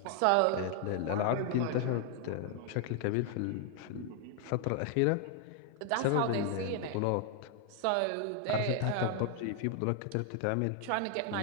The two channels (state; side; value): different; both; correlation 0.00